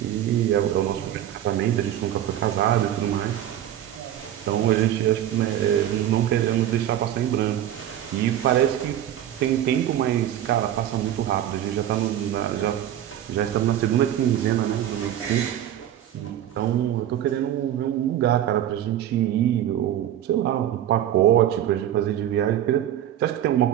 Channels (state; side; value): quieter; left; 11.5 dB